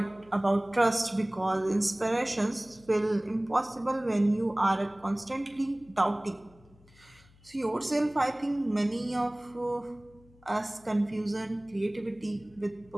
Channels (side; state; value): left; noise; hum, 27 dB below the sound